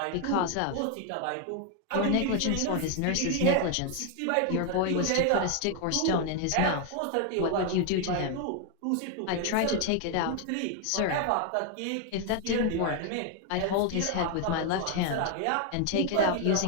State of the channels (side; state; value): both; different; correlation 0.01